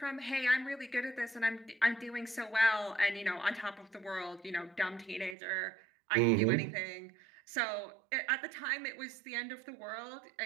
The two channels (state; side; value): drops out; left; at 5.4 s